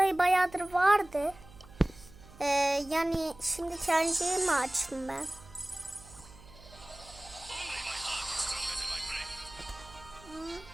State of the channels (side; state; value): right; noise; hum, 21 dB below the sound